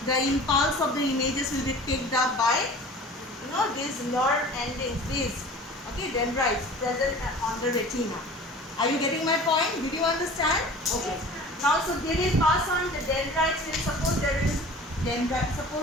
The impulse of the images will be picked up by these nerve endings, these dendrites present on the retina. Are you getting my point? Did you understand? Okay. Now, so they will pass on the dendrites. Suppose there is dendrite.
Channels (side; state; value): both; normal; correlation 0.42